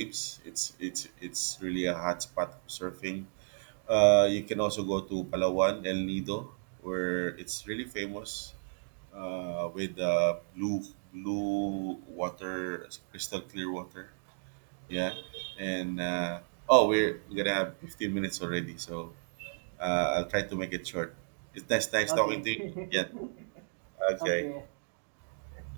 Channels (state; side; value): silent; left; digital silence